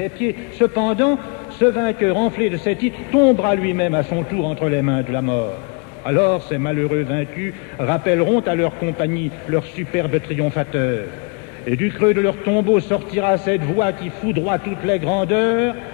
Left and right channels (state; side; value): quieter; right; 34.1 dB